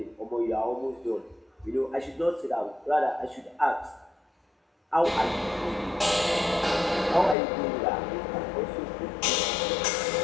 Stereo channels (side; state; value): right; drops out; at 7.4 s